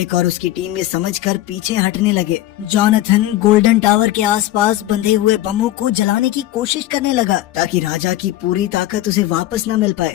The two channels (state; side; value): quieter; right; 14.8 dB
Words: और उसकी टीम ये समझकर पीछे हटने लगे। जॉनथन गोल्डन टावर के आसपास बंधे हुए बमों को जलाने की कोशिश करने लगा, ताकि राजा की पूरी ताकत उसे वापस न मिल